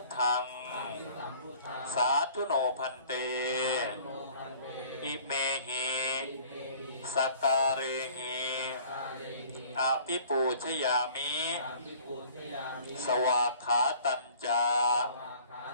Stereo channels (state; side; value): inverted; both; correlation -0.51